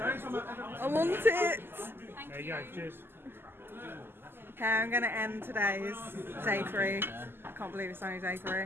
I want it. There you go. Cheers. Okay, I'm going to end today's day 3. I can't believe it's only day 3.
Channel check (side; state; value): left; late; 0.11 ms